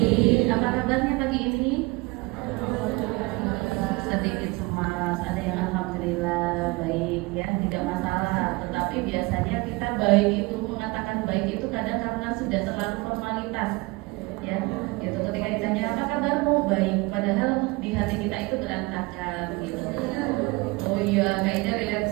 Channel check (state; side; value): quieter; left; 24.7 dB